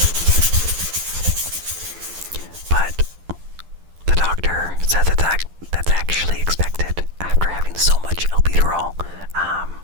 But the doctor said that's actually expected after having so much albuterol.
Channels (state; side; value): late; left; 11 ms